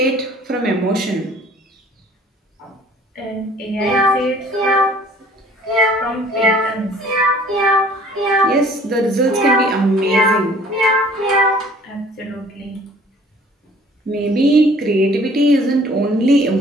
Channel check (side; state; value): both; normal; correlation 0.54